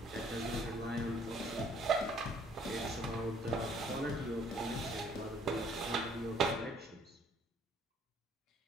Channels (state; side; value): normal; both; correlation 0.60